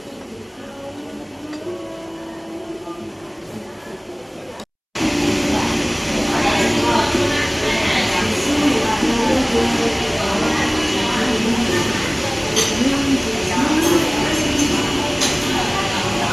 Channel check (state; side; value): identical; both; correlation 1.00